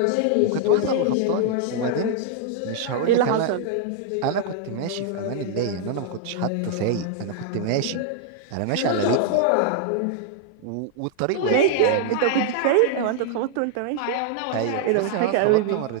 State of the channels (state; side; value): different; both; correlation -0.01